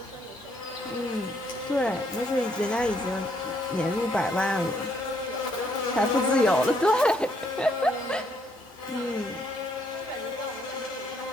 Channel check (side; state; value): both; normal; correlation 0.70